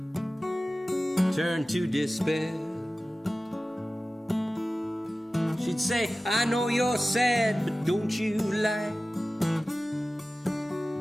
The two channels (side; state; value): both; normal; correlation 0.96